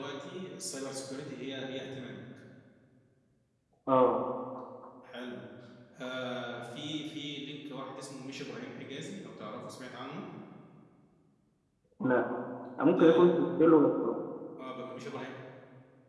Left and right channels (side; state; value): both; identical; correlation 1.00